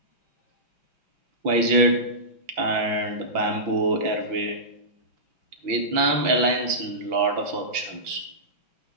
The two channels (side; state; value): left; late; 6.0 ms